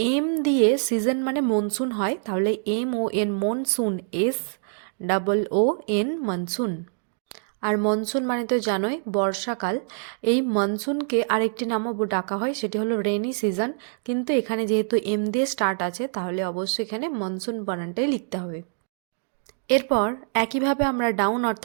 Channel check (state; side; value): silent; left; digital silence